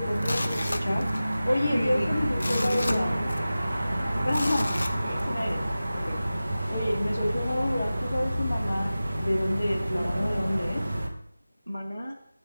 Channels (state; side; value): inverted; both; correlation -0.96